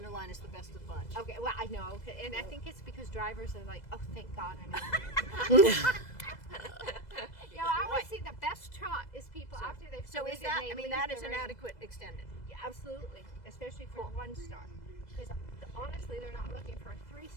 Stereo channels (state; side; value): late; right; 2.0 ms